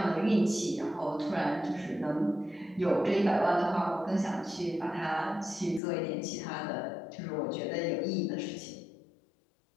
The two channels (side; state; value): right; drops out; at 5.8 s